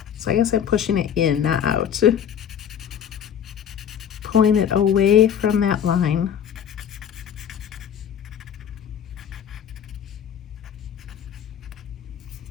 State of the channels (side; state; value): right; quieter; 8.7 dB